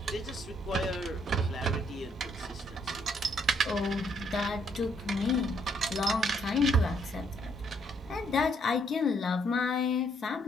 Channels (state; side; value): normal; both; correlation 0.70